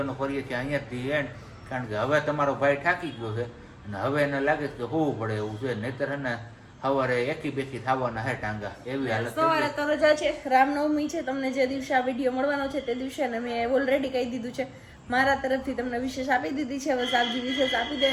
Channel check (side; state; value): both; identical; correlation 1.00